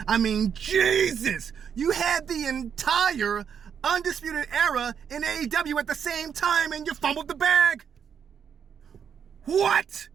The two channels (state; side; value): quieter; left; 7.6 dB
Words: I mean, Jesus! You had the entire Undisputed Era in AEW at the same time and you fumbled the bag! What?